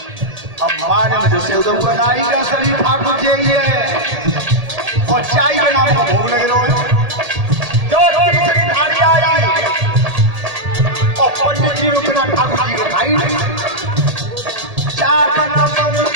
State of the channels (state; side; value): late; left; 1.8 ms